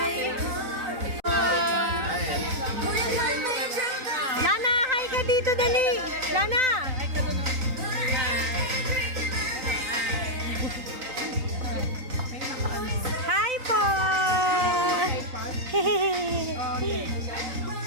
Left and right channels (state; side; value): late; left; 3.9 ms